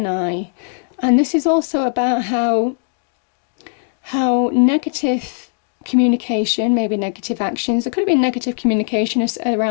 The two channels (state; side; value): silent; right; digital silence